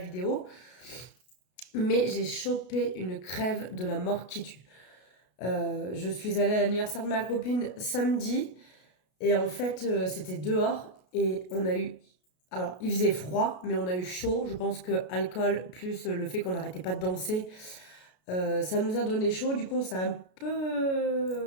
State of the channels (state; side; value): late; right; 33 ms